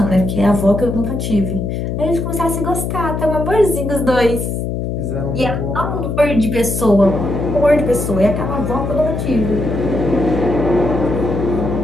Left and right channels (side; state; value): left; noise; hum, 3 dB below the sound